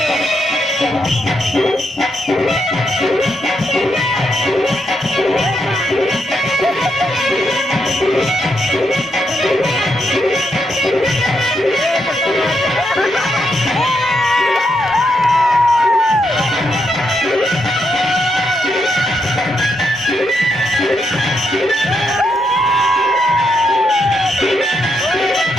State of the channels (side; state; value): both; normal; correlation 0.80